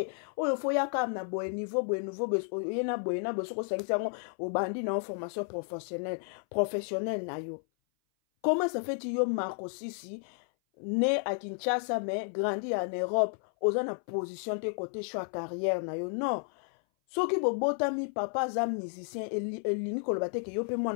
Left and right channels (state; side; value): silent; right; 56 dB below the other